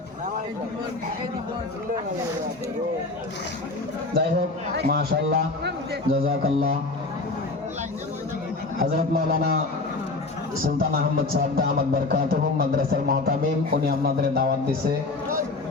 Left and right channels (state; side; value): quieter; right; 3.3 dB